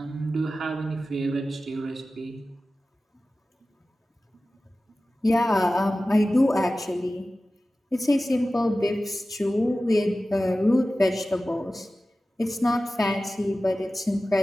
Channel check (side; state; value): both; normal; correlation 0.95